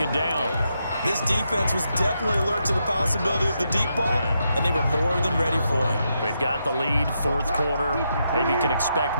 down. This defense was definitely alert to the possibility of the deep ball, and they were more than ready for it. They've got the lead, fourth quarter. Maybe you can expect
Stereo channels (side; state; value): both; inverted; correlation -0.82